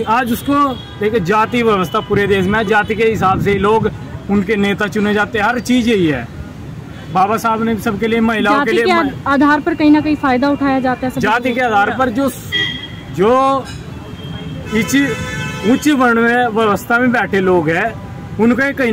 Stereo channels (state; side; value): identical; both; correlation 1.00